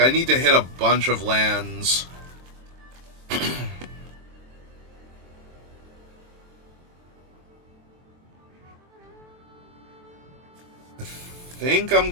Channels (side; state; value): left; late; 23 ms